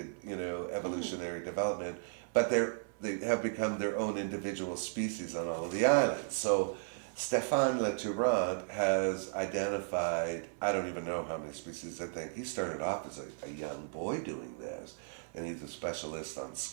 you know, evolutionary development, but they have become their own individual species on all of the islands. So Stéphane Leturant has identified, I don't even know how many species, I think. He started off as a young boy doing this, and he's a specialist on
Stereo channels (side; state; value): left; silent; 54 dB below the other